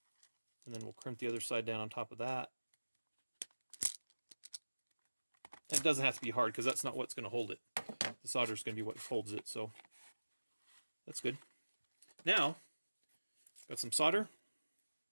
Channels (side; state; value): both; inverted; correlation -1.00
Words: And then we'll crimp the other side down on top of that. And it doesn't have to be hard because that's not what's going to hold it. The solder is going to be what holds it, so that's good. Now, got some solder.